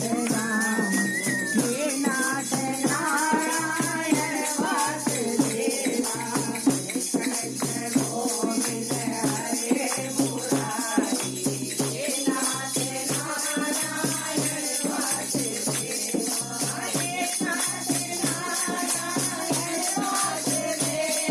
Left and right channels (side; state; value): both; identical; correlation 1.00